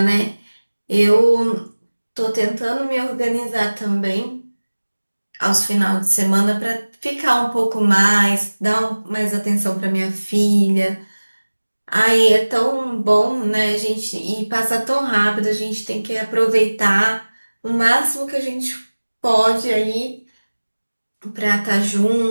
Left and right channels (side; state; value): both; inverted; correlation -1.00